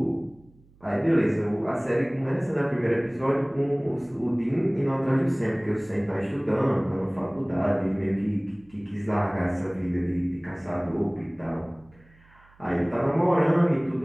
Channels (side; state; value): right; noise; hum, 29 dB below the sound